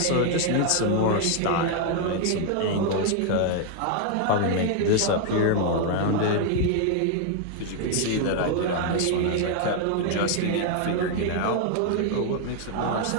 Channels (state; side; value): different; both; correlation 0.00